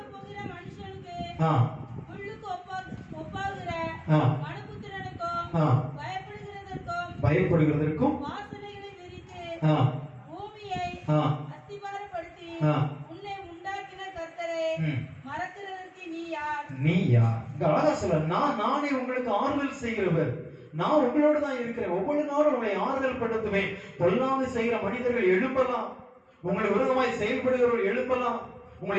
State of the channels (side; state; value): both; identical; correlation 1.00